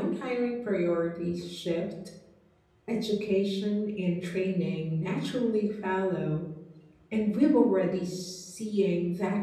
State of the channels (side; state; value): both; identical; correlation 1.00